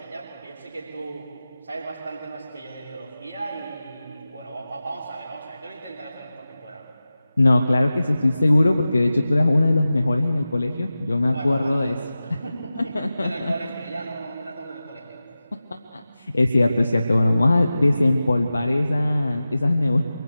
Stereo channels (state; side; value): inverted; both; correlation -0.95